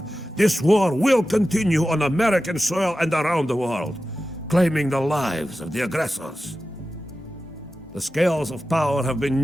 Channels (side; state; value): both; normal; correlation 0.93